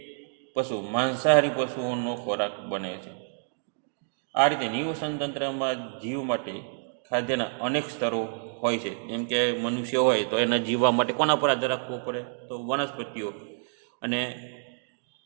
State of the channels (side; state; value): left; silent; digital silence